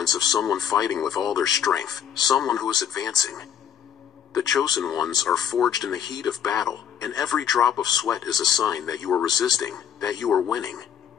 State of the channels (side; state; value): right; quieter; 8.8 dB